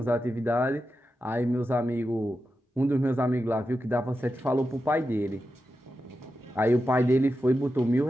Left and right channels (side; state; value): both; normal; correlation 0.90